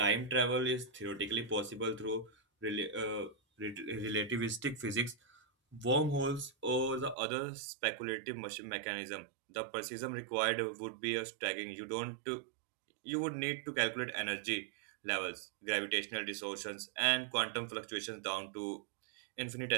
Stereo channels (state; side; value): drops out; left; at 7.2 s